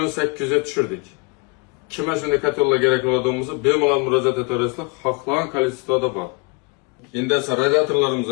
800 ga tushirdik. Kimga shunday kotellar kerak bo'ladiganimizni bemalol murojaat etaverasizlar. Xohlagan kolleksiyada bor. Endi esa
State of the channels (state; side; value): quieter; right; 32.0 dB